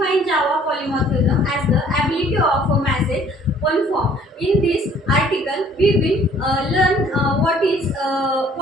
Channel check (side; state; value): both; normal; correlation 0.57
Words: Java polymorphism as the ability of a message one form. In this article, we will learn what is